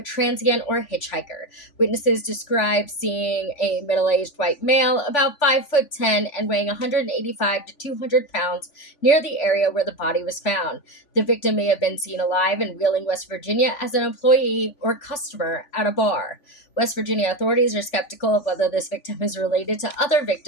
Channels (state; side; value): late; right; 3.5 ms